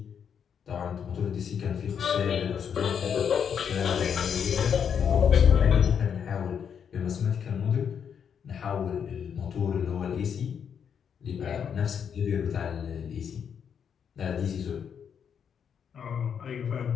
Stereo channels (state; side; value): quieter; right; 7.6 dB